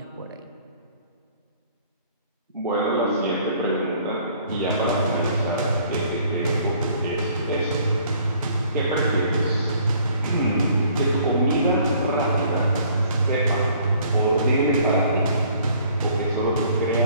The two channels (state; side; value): inverted; both; correlation -0.58